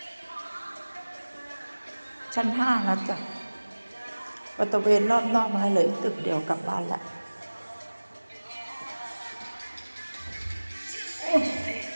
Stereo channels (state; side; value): inverted; both; correlation -1.00